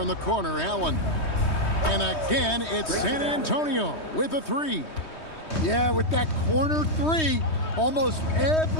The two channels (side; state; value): right; late; 3.2 ms